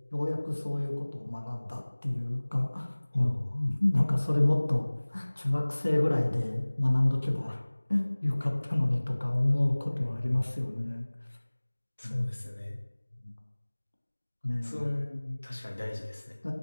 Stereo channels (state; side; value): inverted; both; correlation -1.00